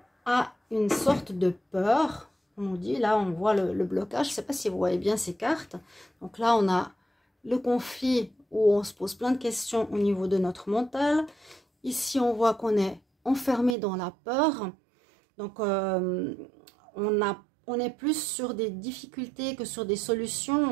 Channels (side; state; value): left; drops out; at 13.8 s